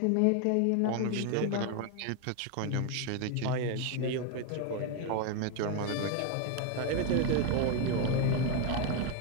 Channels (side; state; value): both; different; correlation 0.01